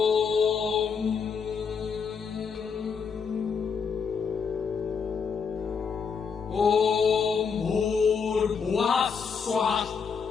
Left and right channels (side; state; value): right; quieter; 6.0 dB